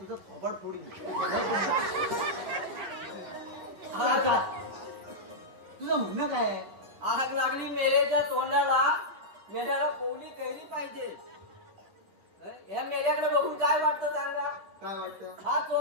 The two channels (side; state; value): left; late; 10 ms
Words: थोबाड फोडीन तुझं म्हणणं काय आहे आग लागली मेलेच्या तोंडाला मेल्याला कोवली कैरी पाहिजे. या मेल्याकडे बघून काय वाटतं सांगा. काय वाटतं हा